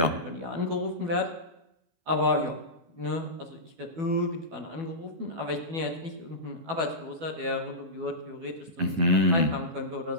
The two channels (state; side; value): late; left; 12 ms